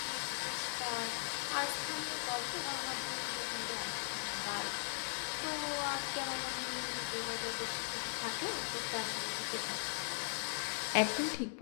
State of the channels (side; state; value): right; silent; digital silence